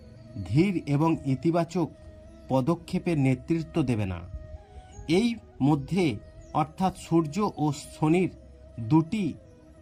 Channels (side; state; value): both; identical; correlation 1.00